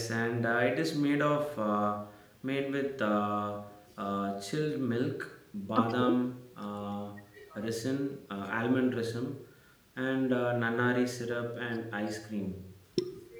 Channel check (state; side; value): identical; both; correlation 1.00